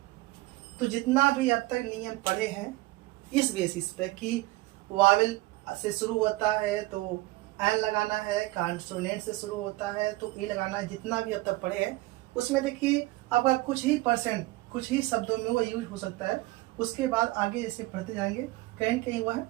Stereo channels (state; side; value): quieter; left; 19.8 dB